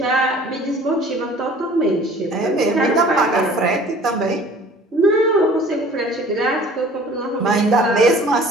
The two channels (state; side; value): normal; both; correlation 0.49